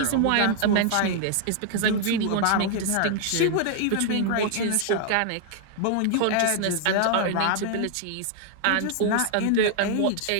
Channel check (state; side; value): different; both; correlation 0.00